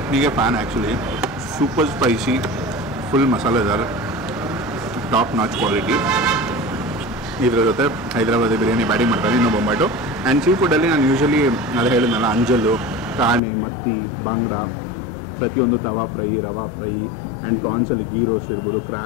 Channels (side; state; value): right; drops out; at 13.4 s